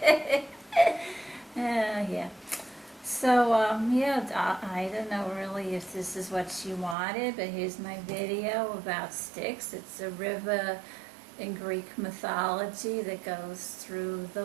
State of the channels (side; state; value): left; drops out; at 7.0 s